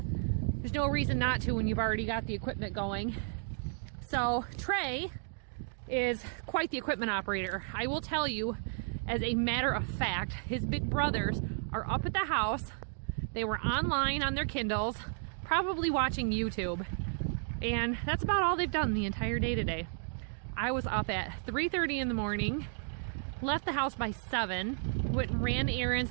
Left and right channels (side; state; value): left; silent; digital silence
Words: there's no reason not to when you've already got the equipment going. So Trey is quite the equipment operator. I will tell you, as a matter of fact, his big brothers are up at the house. They were online on their Kindles, probably watching YouTube. And that's about all they've done the entire day today. I was up at 3:30 in the morning, left the house by 7, went and ran